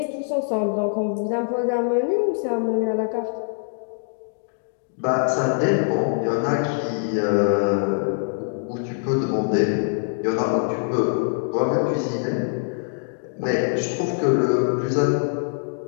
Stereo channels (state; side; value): silent; right; digital silence